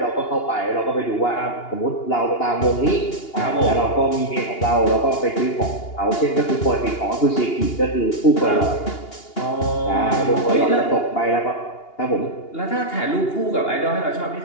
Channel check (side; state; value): right; late; 2.8 ms